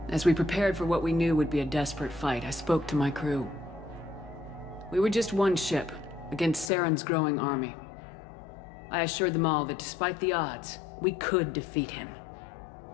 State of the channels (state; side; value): drops out; right; at 6.7 s